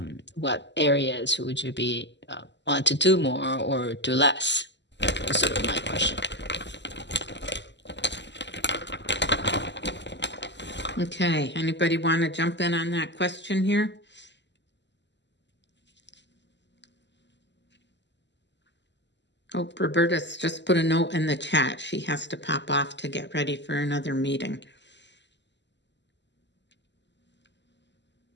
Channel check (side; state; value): right; late; 0.51 ms